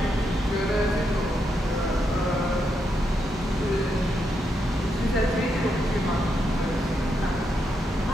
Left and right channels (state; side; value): normal; both; correlation 0.82